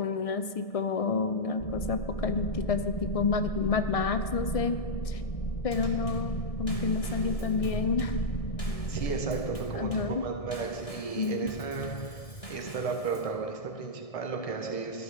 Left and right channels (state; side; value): late; right; 1.6 ms